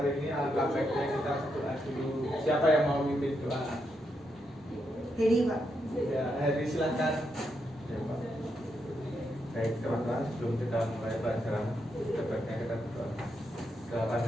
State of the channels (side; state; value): both; normal; correlation 0.82